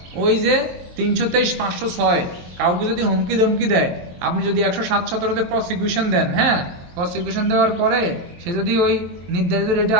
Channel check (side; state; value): left; late; 23 ms